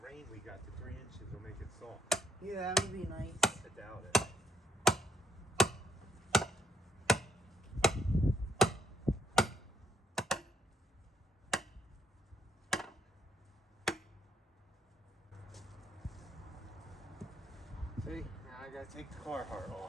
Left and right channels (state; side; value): normal; both; correlation 0.77